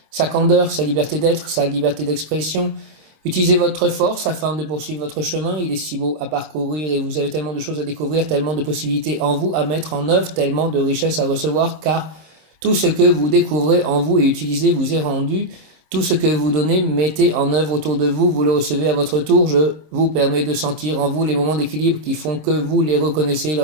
sa candeur, sa liberté d'être, sa liberté d'expression. Utilisez votre force afin de poursuivre votre chemin. Il est si beau à parcourir et vous avez tellement de choses à découvrir, tellement de possibilités en vous à mettre en œuvre, tellement de richesses à recevoir, car tout ce que vous découvrez en vous et utilisez vous est rendu. Tout ce que vous donnez, mettez en œuvre autour de vous, vous le recevez à votre tour. Je vous permets de sentir en vous les moments d'équilibre qui font que vous les reconnaissez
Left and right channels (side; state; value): left; late; 26 ms